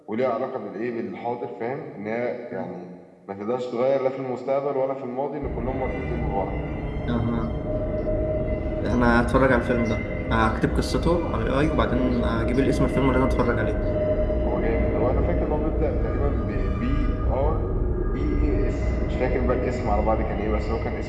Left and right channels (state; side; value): identical; both; correlation 1.00